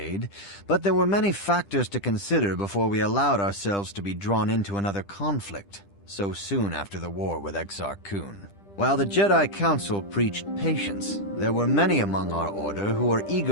but there were many factors to consider before we allowed ourselves to be drawn into another conflict, so soon after the war with Exar Kun. While the Jedi Council preached patience, there were many among our order who were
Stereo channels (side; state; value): right; late; 10 ms